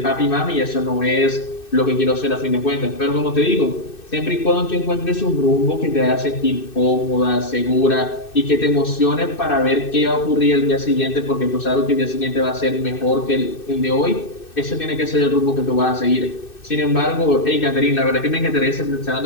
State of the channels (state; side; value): late; right; 2.6 ms